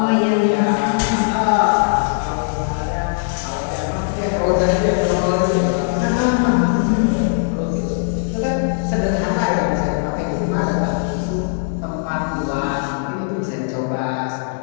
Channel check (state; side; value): silent; right; digital silence